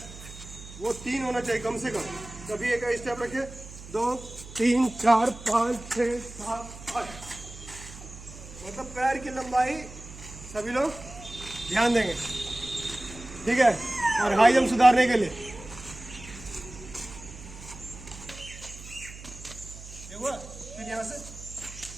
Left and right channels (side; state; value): right; noise; hum, 15 dB below the sound